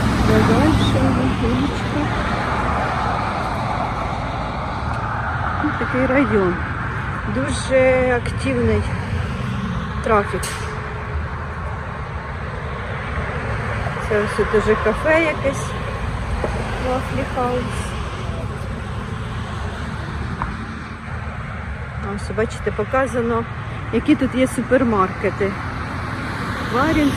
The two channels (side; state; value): both; identical; correlation 1.00